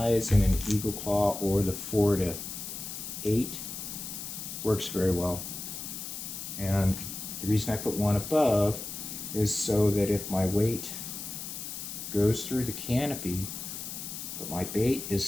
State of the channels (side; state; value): left; noise; hiss, 8 dB below the sound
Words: in an eagle claw or the 4 to 8. Works very well. And the reason I put one above is so that if my weight goes through the canopy, but my bait is